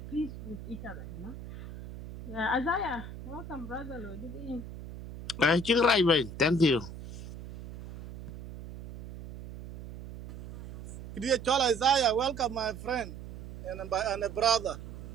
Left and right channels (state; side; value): noise; right; hum, 12 dB below the sound